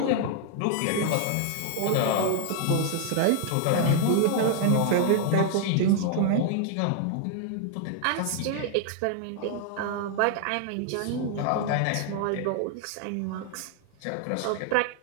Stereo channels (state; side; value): different; both; correlation 0.00